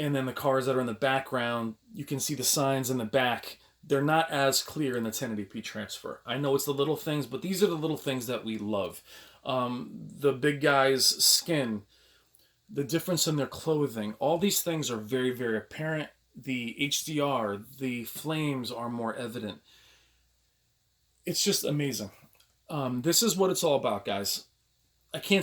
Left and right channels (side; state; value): both; identical; correlation 1.00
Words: then the cars that are in the background, you can see the signs in the back. They're not as clear in the 1080p transfer. I know it's the little things, but these are the little things that we love. The big guy's skin, the difference in their clothing, all these things are very, very apparent. The HDR, the flames are more evident. It's just amazing. This is what it's all about, guys. I can't